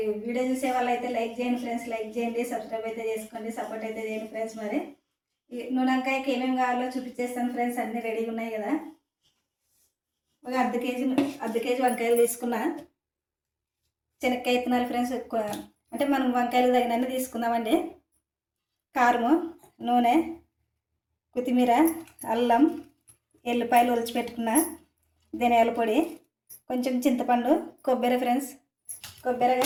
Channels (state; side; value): identical; both; correlation 1.00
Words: వీడియో చూసే వాళ్ళు అయితే లైక్ చేయండి ఫ్రెండ్స్, లైక్ చేయండి, సబ్స్క్రైబ్ అయితే చేసుకోండి, సపోర్ట్ అయితే చేయండి ఫ్రెండ్స్. మరి వంకాయకి ఏమేమి కావాలో చూపించేస్తాను ఫ్రెండ్స్. అన్నీ రెడీగా ఉన్నాయి కదా. ఒక అర్ధ కేజీ వంకాయలు తీసుకున్నా. శనక్కాయ విత్తనాలు ఫ్రెండ్స్, అంటే మనం వంకాయలు తగినన్ని తీసుకుందామండి. కారము, నూనె, కొత్తిమీర, అల్లం, ఎల్లిపాయలు ఒలిచిపెట్టుకున్న, ధనియాల పొడి, కొంచెం చింతపండు, కొబ్బరి ఫ్రెండ్స్, కొబ్బరి,